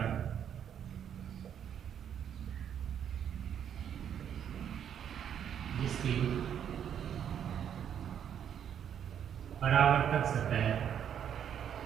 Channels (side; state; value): left; quieter; 8.9 dB